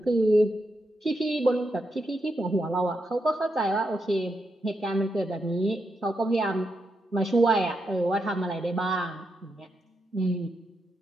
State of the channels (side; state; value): both; normal; correlation 0.83